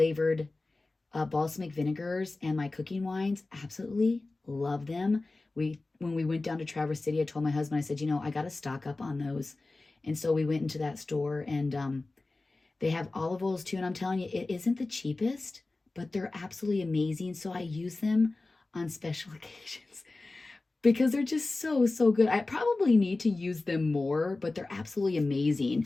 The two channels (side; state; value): right; quieter; 3.2 dB